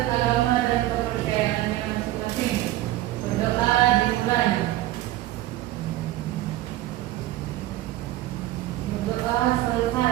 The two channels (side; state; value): left; quieter; 15.6 dB